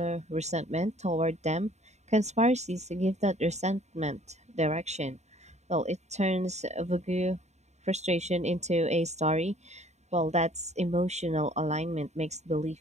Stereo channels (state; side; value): late; left; 0.33 ms